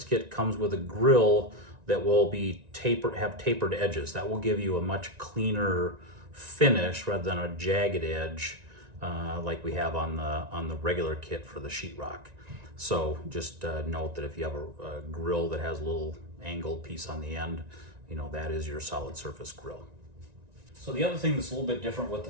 kit comes with a grill that will be have tapered edges. That will give you a much cleaner finish rather than a jagged edge like we have on the regular kit for the sheetrock. So just note that if you have a grill that has a little angled piece on the end, you know, that is your solid surface grill. So the other thing that's a little bit different with the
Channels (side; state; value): left; late; 1.9 ms